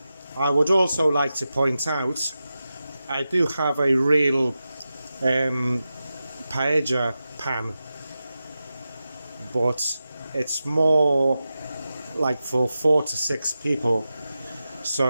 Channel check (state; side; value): inverted; both; correlation -0.92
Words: I would also like to point out I do have a real paella pan, but it's more like for 4 to 6 people,